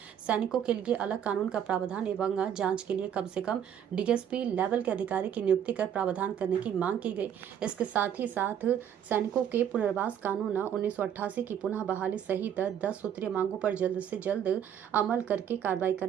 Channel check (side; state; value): left; quieter; 9.2 dB